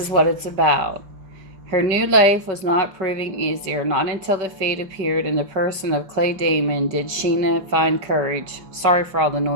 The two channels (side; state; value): left; late; 5.2 ms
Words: what it's about. Her new life was not proving easier. Not until the fate appeared in the person of Clay Damon did Sheila find courage. Sorry for all the